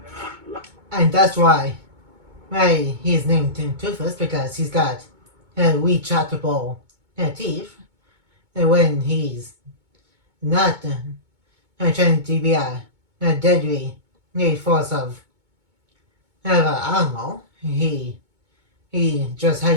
And that's why he's named Toothless, because he's got retractable teeth. And when he's not trying to be a deadly force of an animal, he just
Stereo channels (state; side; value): late; left; 2.2 ms